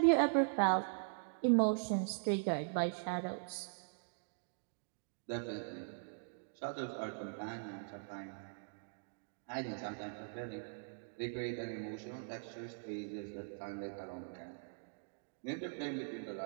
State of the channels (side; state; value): left; silent; digital silence